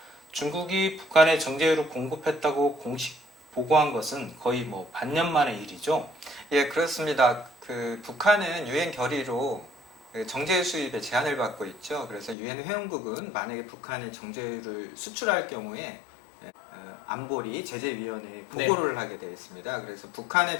중국이 북한에 정제유를 공급했다고 공식 보고한 것은 거의 반년 만의 일이죠. 예, 그렇습니다. 북한은 유엔 결의로 정제유 수입에 제한을 받고 있죠. 그래서 유엔 회원국은 만약에 북한이 정제유를 수출할 경우에 안보리 제재위원회에 보고를 하게 되어 있습니다. 그래서 북한의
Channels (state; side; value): drops out; right; at 12.4 s